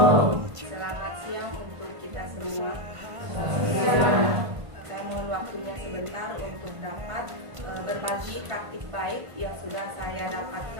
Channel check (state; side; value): late; left; 1.5 ms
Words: Selamat siang untuk kita semua. Saya mohon waktunya sebentar untuk dapat berbagi praktik baik yang sudah saya